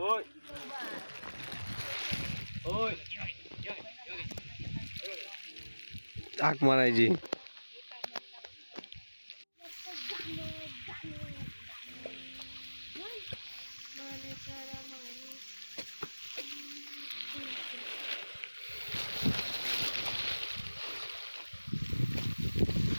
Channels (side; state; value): both; inverted; correlation -1.00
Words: होय हाक मारायची.